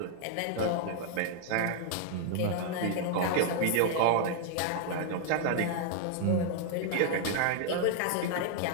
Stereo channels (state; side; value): different; both; correlation 0.00